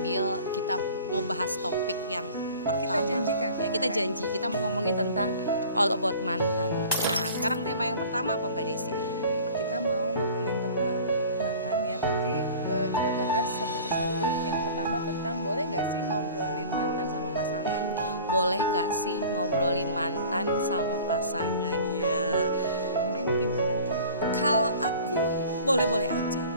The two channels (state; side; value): inverted; both; correlation -0.44